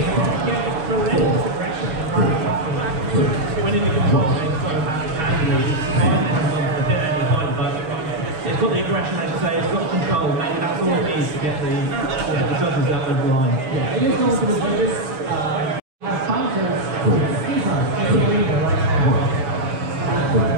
we can get relentless aggression from Carbon Coffee. When in the control, it's got a match handily. It's fine, it has on the any point, but it's got the aggression, as you say, it's got control. Maybe that's all it needs to get the judges that over the line. Yeah, it is going to be this. Bouncers, Schism in the arena right now.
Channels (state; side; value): late; left; 6.4 ms